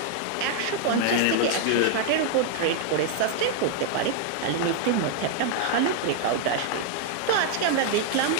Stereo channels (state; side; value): different; both; correlation 0.00